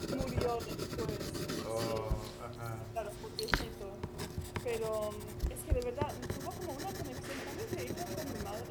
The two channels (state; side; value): identical; both; correlation 1.00